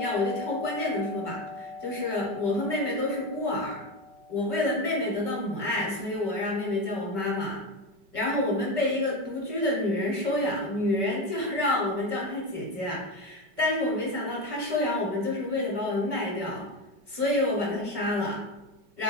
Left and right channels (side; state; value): left; late; 5.2 ms